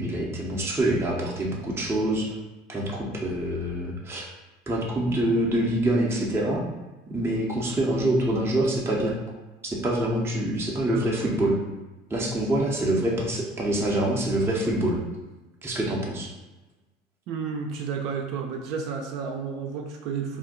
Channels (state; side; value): normal; both; correlation 0.57